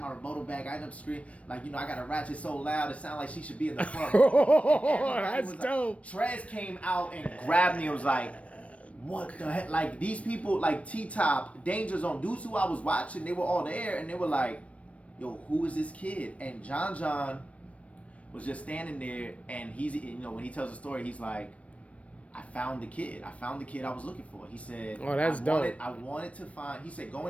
rebuttal bag. I ended up screaming, like, you know, I got a ratchet so loud it sounded like she should be in the front. That's dope. Like, Trez came out and grabbed me and was like, what the heck? Like these people, like T-Top, Danger Zone, dudes who I was watching, they were all there and they were like, yo, who is this kid? And John was just standing there, and he's, you know, when he tells the story, he's like, I found the kid I was looking for. He said, oh, that's dope. I wanted to find, he said,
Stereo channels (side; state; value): right; late; 0.064 ms